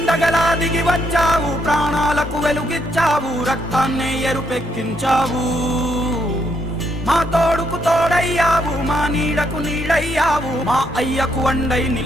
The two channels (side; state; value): both; normal; correlation 0.75